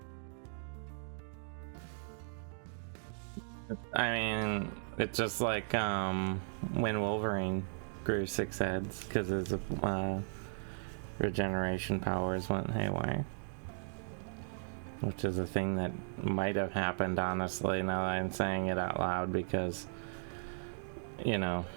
I mean, it's just like when Wolverine grew 6 heads because his regeneration powers went haywire. Which is a thing that might have happened, honestly, now that I'm saying it out loud, because, you know,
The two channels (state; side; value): silent; left; digital silence